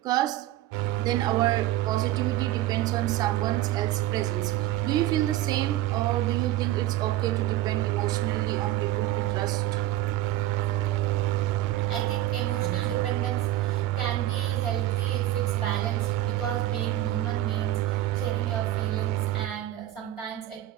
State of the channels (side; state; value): left; quieter; 14.6 dB